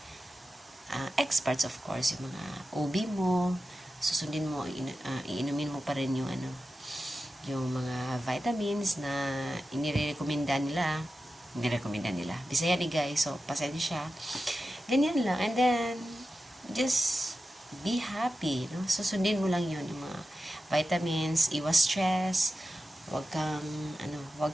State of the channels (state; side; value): normal; both; correlation 0.92